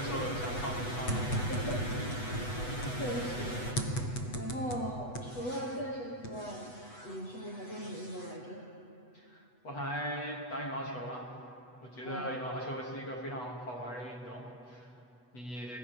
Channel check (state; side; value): late; right; 8.1 ms